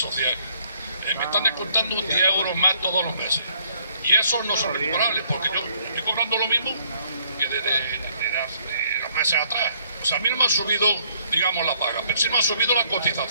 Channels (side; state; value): both; inverted; correlation -0.65